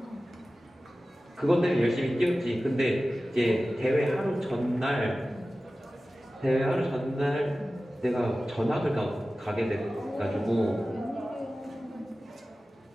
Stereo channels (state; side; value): normal; both; correlation 0.96